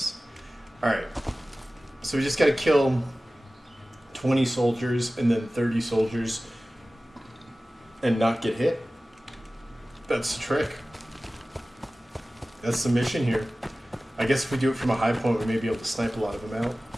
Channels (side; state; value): both; normal; correlation 0.97